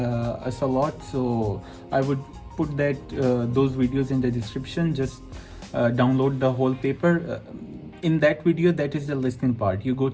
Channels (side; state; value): both; identical; correlation 1.00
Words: a lot. So I would put that those videos in the description. Just download the whole paper. In that video, that is the listening part. You go